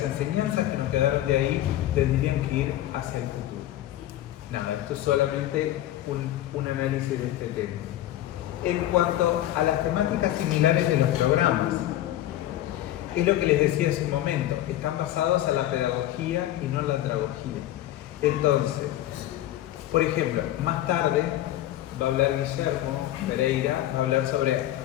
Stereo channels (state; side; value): quieter; right; 13.6 dB